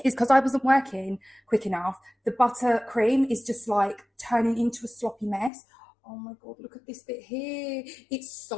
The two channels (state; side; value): drops out; right; at 5.5 s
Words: is because I wasn't working quick enough. The buttercream is just turning into a sloppy mess. Oh my God, look at this bit here. It's